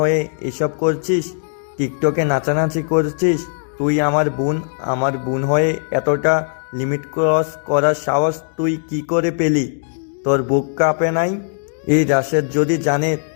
এসব করছিস, টিকটকে নাচানাচি করছিস। তুই আমার বোন হয়ে এতটা লিমিট ক্রস করার সাহস তুই কি করে পেলি? তোর বুক কাঁপে নাই? এই রাশেদ যদি জানে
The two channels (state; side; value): silent; right; digital silence